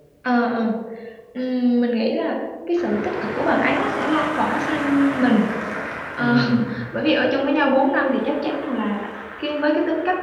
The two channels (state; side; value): identical; both; correlation 1.00